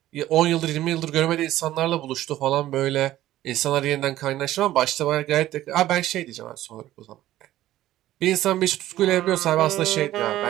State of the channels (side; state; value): left; quieter; 14.3 dB